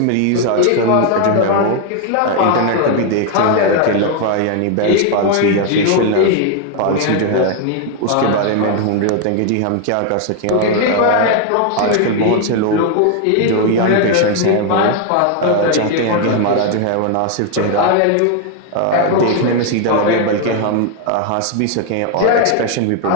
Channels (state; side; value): different; both; correlation 0.00